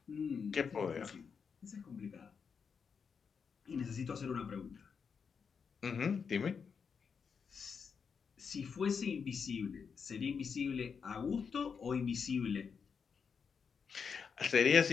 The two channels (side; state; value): right; quieter; 6.1 dB